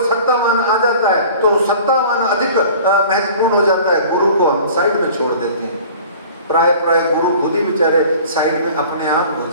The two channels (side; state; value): both; inverted; correlation -0.45